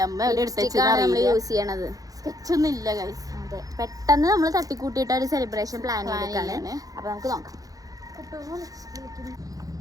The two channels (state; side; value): late; left; 0.17 ms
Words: അമ്മ എവിടെ എടുത്തേക്കാണ് നമ്മൾ യൂസ് ചെയ്യണത്. സ്കെച്ചൊന്നും ഇല്ല ഗൈസ്. അതെ, പെട്ടെന്ന് നമ്മൾ തട്ടിക്കൂട്ടിയിട്ട് ഒരു സെലിബ്രേഷൻ പ്ലാൻ ചെയ്തിട്ടാണ്. അപ്പോൾ നമുക്ക് നോക്കാം.